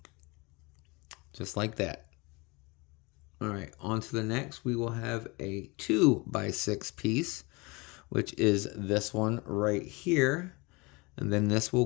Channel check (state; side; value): quieter; right; 26.6 dB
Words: just like that. All right, on to the next. We will have a 2 by 6 piece, which is this one right here, and then this will